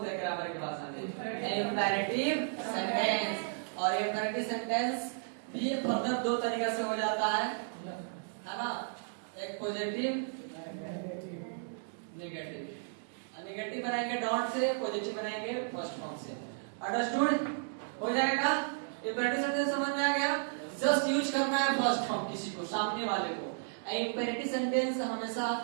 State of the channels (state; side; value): silent; left; digital silence